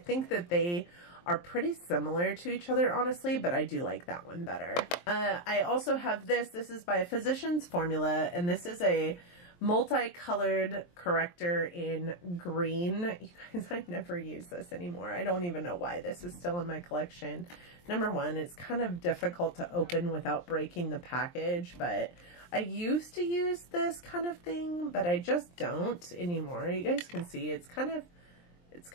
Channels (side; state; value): right; late; 23 ms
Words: that they are pretty similar to each other, honestly, but I do like that one better. I also have this. This is by Physicians Formula, and this is a multicolored corrector in green. You guys, I never use this anymore. I don't even know why this is still in my collection. Number one, it's kind of difficult to open without breaking the package, but I used to use this kind of thing, but I just don't anymore. You guys can see it's kind of